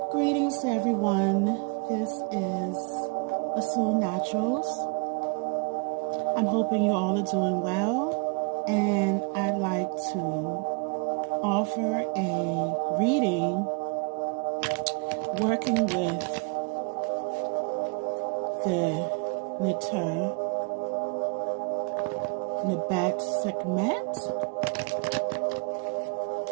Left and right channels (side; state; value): left; quieter; 32.7 dB